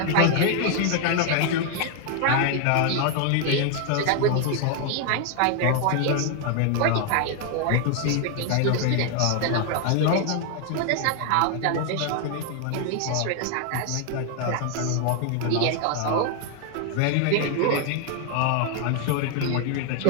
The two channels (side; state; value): both; different; correlation 0.00